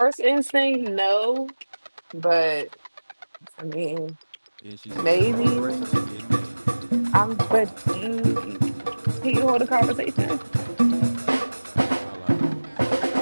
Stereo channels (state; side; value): inverted; both; correlation -1.00